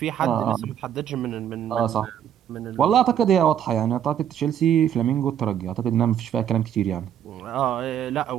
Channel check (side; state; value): left; quieter; 9.7 dB